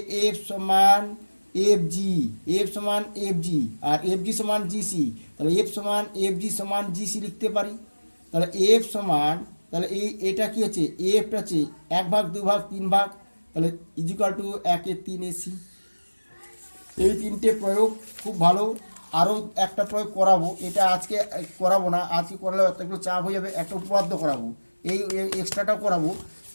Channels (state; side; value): inverted; both; correlation -1.00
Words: এফ সমান এফ জি, এফ সমান এফ জি আর এফ জি সমান জিসি। তাহলে এফ সমান এফ জি সমান জিসি লিখতে পারি। তাহলে এফ সমান, তাহলে এটা কি হচ্ছে, এফটা হচ্ছে 1/2, 2/3, 3/, তাহলে ইজিক্যাল টু 1/3 এসি। এই তিনটে প্রয়োগ খুব ভালো। আরও একটা প্রয়োগ করাবো, এটা আজকে করাবো না, আজকে করালে একটু চাপ হয়ে যাবে। একটা উপপাদ্য করাবো, এই এক্সট্রাটাও করাবো।